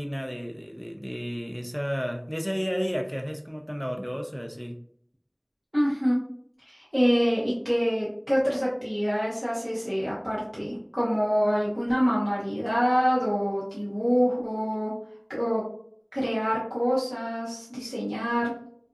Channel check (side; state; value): both; identical; correlation 1.00